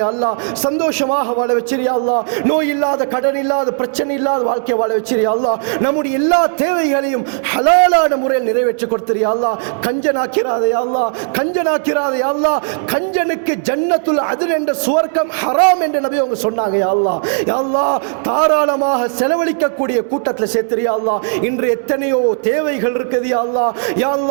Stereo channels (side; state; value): left; silent; digital silence